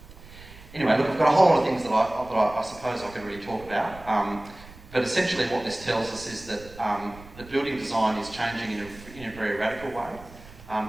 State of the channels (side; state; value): right; noise; rumble, 19 dB below the sound